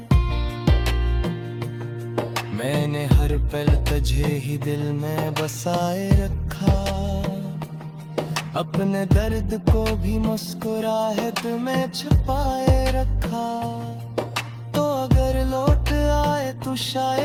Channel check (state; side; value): identical; both; correlation 1.00